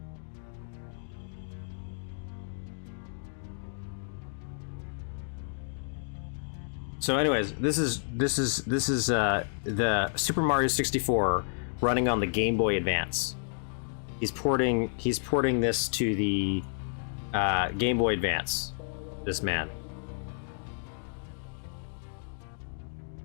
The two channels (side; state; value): right; silent; digital silence